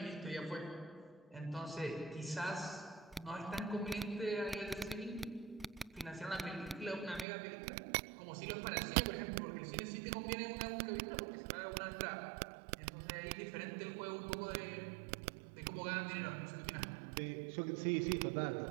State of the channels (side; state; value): left; drops out; at 7.2 s